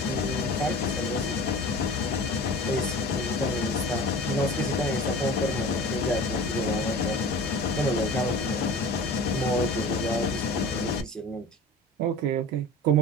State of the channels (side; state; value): both; normal; correlation 0.38